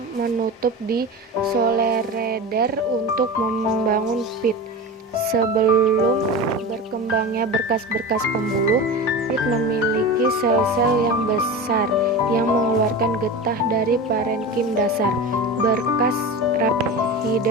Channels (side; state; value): both; normal; correlation 0.28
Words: menutup di solereder untuk membangun pit. Sebelum berkembangnya berkas-berkas pembuluh, pit memiliki sel-sel yang besar yang mengeluarkan getah dari parenkim dasar. Berkas